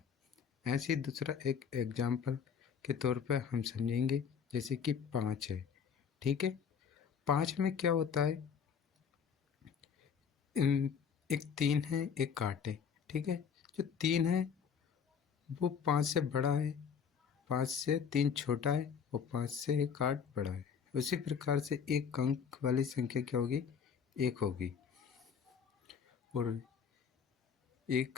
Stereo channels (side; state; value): right; quieter; 6.9 dB